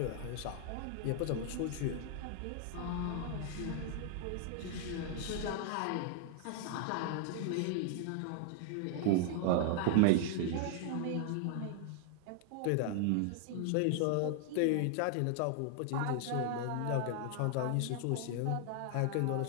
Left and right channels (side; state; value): both; different; correlation 0.00